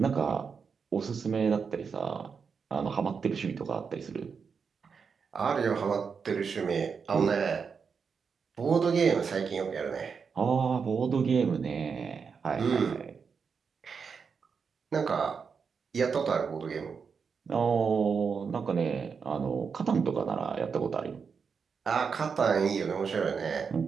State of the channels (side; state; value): left; quieter; 5.9 dB